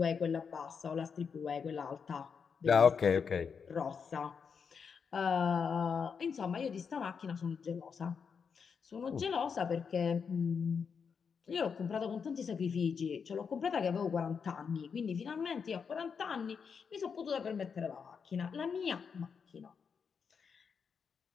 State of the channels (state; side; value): quieter; right; 6.2 dB